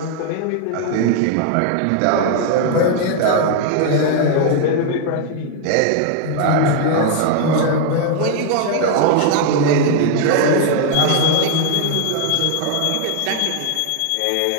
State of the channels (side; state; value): both; different; correlation 0.00